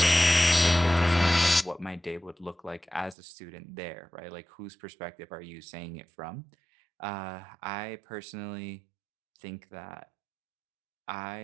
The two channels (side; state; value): left; drops out; at 3.2 s